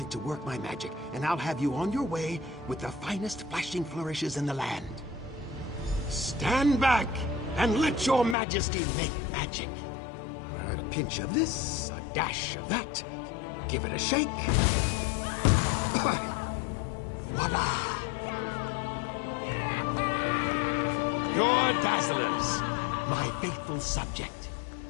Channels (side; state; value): right; drops out; at 8.3 s